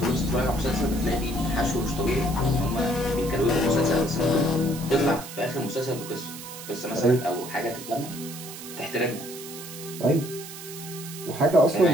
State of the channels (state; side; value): noise; right; hiss, 12 dB below the sound